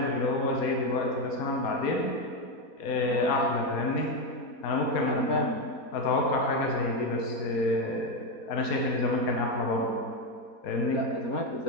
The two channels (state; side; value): late; right; 4.2 ms